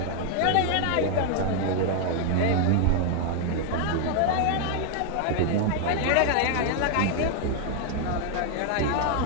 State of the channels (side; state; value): both; different; correlation 0.00